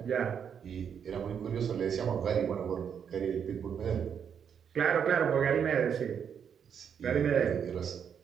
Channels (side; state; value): left; quieter; 7.7 dB